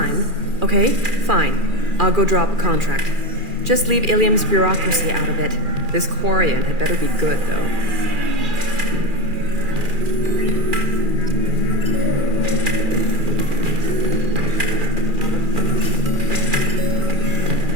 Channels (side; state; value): left; late; 2.4 ms